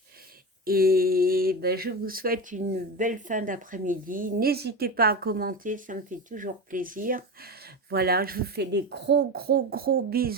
et je vous souhaite une belle fin d'après-midi. N'hésitez pas à commenter, ça me fait toujours plaisir. Voilà, je vous fais des gros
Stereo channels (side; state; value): both; normal; correlation 0.22